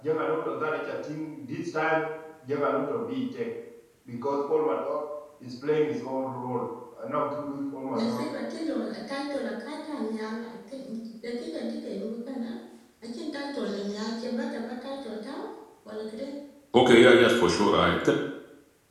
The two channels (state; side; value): identical; both; correlation 1.00